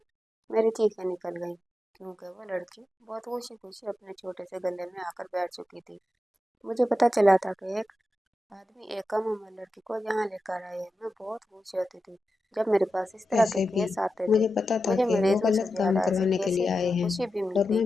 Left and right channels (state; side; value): normal; both; correlation 0.91